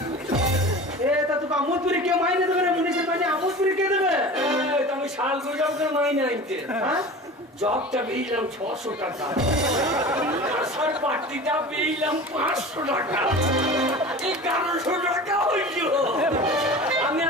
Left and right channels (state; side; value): normal; both; correlation 0.36